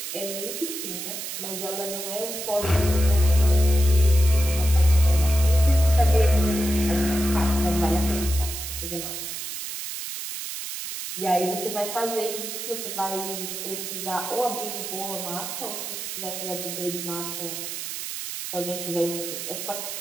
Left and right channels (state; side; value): noise; right; hiss, 6 dB below the sound